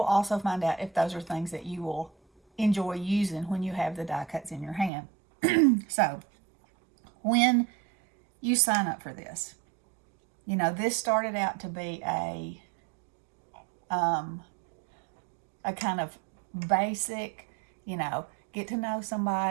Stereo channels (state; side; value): drops out; left; at 4.9 s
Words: also find out if those are things that you will enjoy using when you have the die cuts in your hand. So, when you sign up for this, this started out to be a kind of basic, get to know